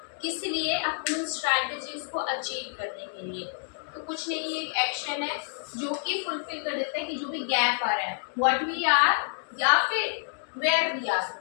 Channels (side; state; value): right; silent; digital silence